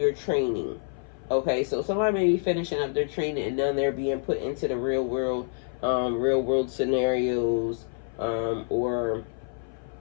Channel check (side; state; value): right; silent; 56 dB below the other